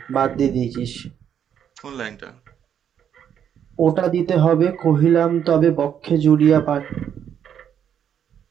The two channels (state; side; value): quieter; left; 8.9 dB